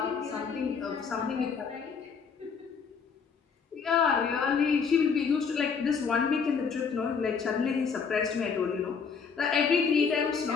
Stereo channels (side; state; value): right; quieter; 5.9 dB